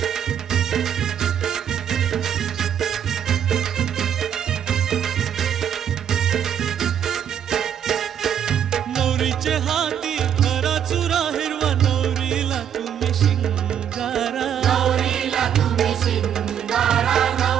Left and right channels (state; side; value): quieter; left; 9.1 dB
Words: नवरीचे हाती खरा चुरा हिरवा नवरीला तुम्ही शिंगारा